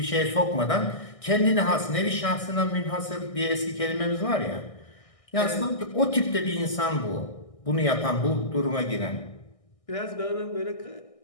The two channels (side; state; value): right; late; 1.6 ms